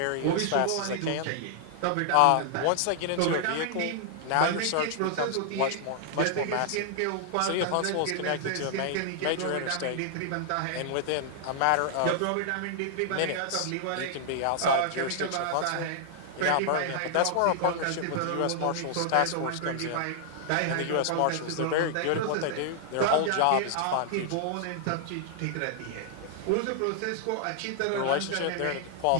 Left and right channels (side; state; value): both; different; correlation -0.01